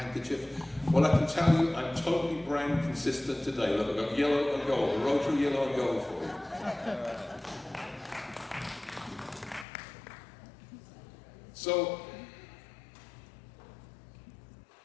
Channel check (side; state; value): right; drops out; at 9.7 s